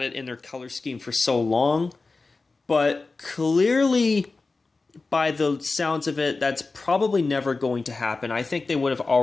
it in their color scheme for so long. But clearly, by the sounds of it, that's probably never going to happen. I think they would have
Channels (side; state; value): right; quieter; 3.8 dB